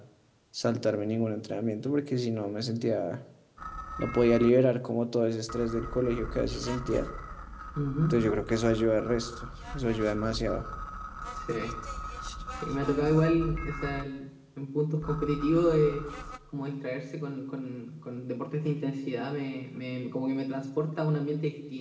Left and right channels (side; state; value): both; identical; correlation 1.00